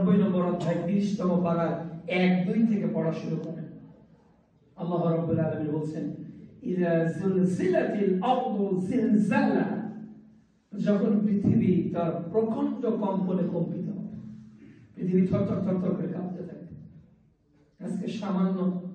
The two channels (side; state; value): both; identical; correlation 1.00